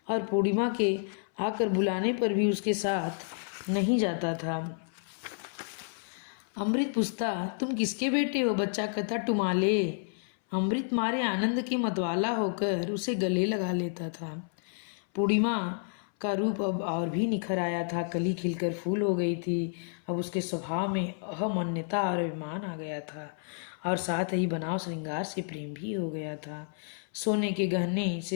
और पूर्णिमा के आकर बुलाने पर भी उसके साथ नहीं जाता था। अमृत पूछता, तुम किसके बेटे हो? बच्चा कहता, टुमाले। अमृत मारे आनंद के मतवाला होकर उसे गले लगा लेता था। पूर्णिमा का रूप अब और भी निखर आया था। कली खिलकर फूल हो गई थी। अब उसके स्वभाव में अहमन्यता और अभिमान आ गया था और साथ ही बनाव श्रृंगार से प्रेम भी हो गया था। सोने के गहने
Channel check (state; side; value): silent; right; 58 dB below the other